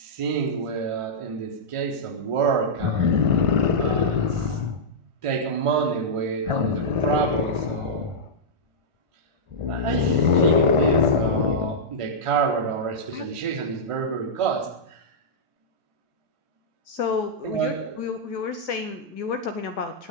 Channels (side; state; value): left; late; 1.5 ms